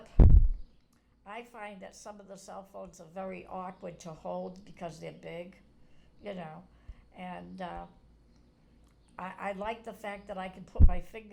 I find that some of the cell phones are very awkward to hold because they're big, and I like the fact that I can put my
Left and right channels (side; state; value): both; identical; correlation 1.00